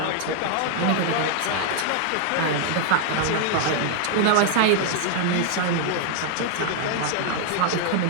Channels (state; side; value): different; both; correlation 0.00